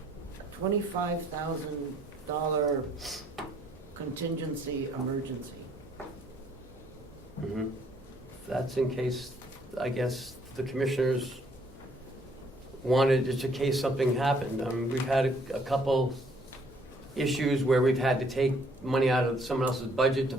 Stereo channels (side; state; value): both; normal; correlation 0.64